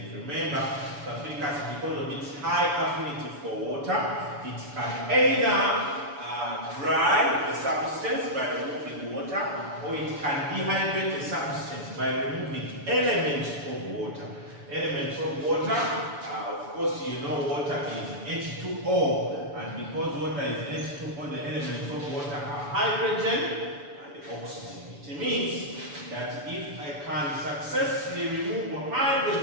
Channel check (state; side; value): late; left; 7.0 ms